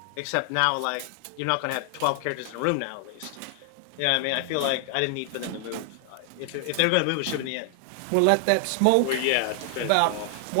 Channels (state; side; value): different; both; correlation 0.00